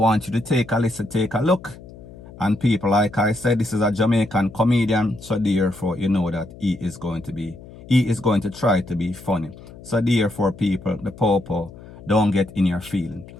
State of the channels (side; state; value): left; noise; hum, 18 dB below the sound